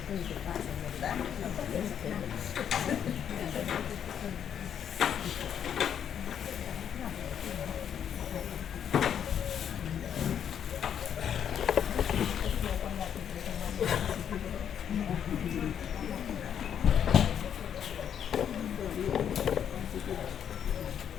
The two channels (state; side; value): quieter; right; 8.8 dB